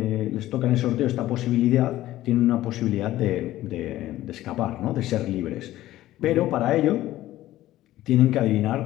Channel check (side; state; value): right; quieter; 15.0 dB